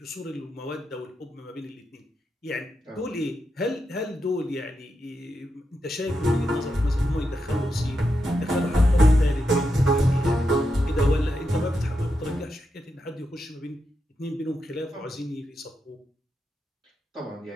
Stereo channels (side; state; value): both; normal; correlation 0.86